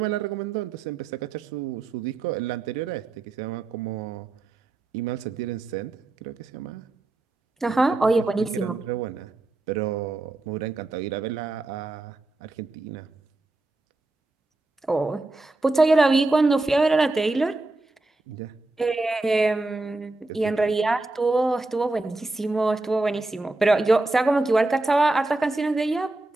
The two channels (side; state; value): left; quieter; 3.1 dB